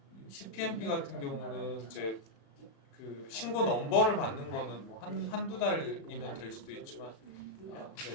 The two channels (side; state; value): right; late; 36 ms